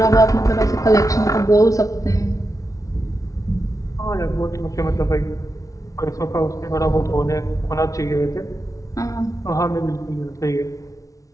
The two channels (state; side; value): late; right; 0.16 ms